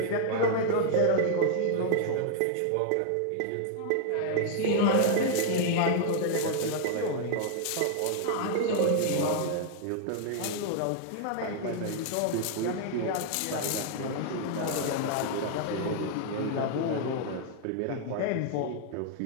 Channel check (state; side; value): different; both; correlation 0.00